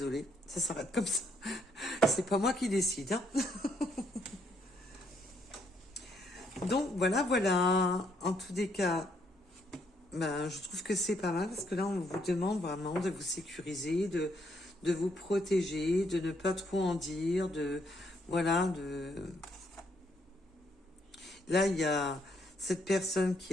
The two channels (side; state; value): both; normal; correlation 0.72